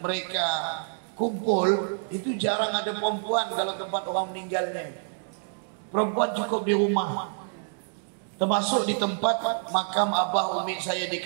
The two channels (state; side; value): silent; left; digital silence